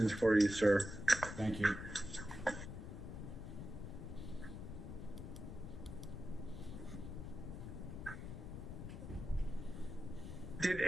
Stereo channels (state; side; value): noise; left; rumble, 8 dB below the sound